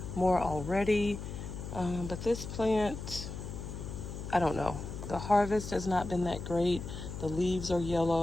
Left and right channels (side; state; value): left; noise; hum, 8 dB below the sound